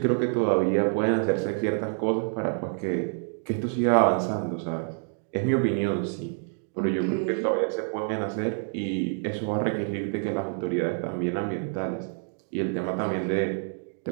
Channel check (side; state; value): left; silent; 60 dB below the other